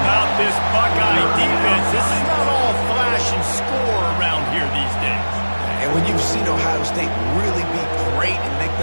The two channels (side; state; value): both; inverted; correlation -1.00